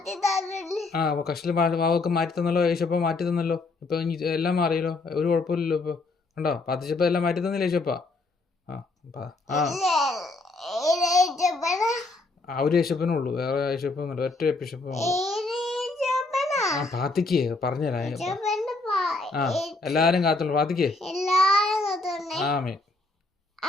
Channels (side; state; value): right; quieter; 3.4 dB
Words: തന്നില്ലേ? കഷ്ടില് വാവൊക്കെ മാറ്റി തന്നല്ലോ, യേശപ്പ മാറ്റി തന്നല്ലോ. ഇപ്പൊ എല്ലാം മാറിയല്ലോ, ഒരു കുഴപ്പമില്ലല്ലോ. ഇപ്പൊ കണ്ടോ, പ്രാർത്ഥിച്ചപ്പോ എല്ലാം മാറ്റി തന്നില്ല യേശപ്പ. ഒരു യേശപ്പനുള്ളൂ, വേറെ യേശപ്പന്നുണ്ട്, ഒറ്റ യേശപ്പ. പ്രാർത്ഥിക്കേ, പറഞ്ഞുതരാ. എല്ലാരും കാത്തുള്ളൂ, പ്രാർത്ഥിക്കേ. ആമേ.